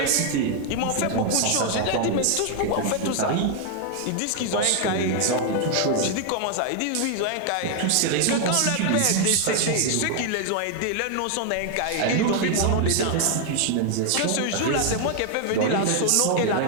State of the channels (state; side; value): different; both; correlation 0.00